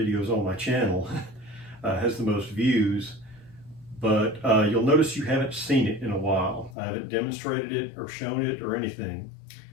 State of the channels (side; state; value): right; drops out; at 6.8 s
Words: on my channel, has the most views. But you'll notice you haven't seen it in a while. I haven't demonstrated it or shown it or anything.